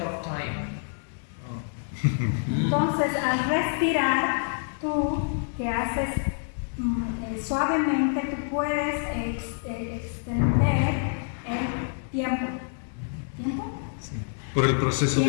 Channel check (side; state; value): right; silent; 60 dB below the other